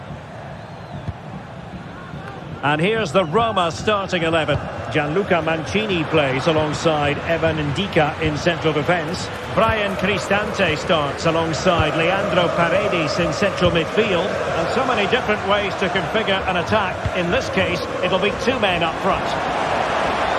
And here's the Roma starting 11. Gianluca Mancini plays alongside Evan Ndika in central defence. Brian Cristante starts alongside Leandro Paredes in central midfield. And so many different ways to configure an attack. In this case, it'll be two men up front.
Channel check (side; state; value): both; identical; correlation 1.00